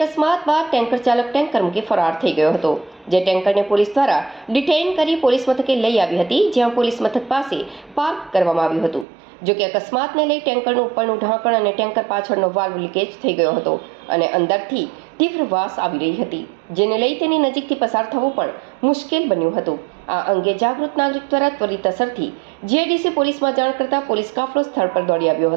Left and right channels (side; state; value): left; drops out; at 9.1 s